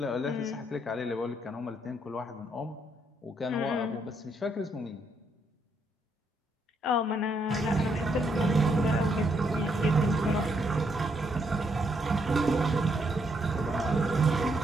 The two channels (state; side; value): normal; both; correlation 0.75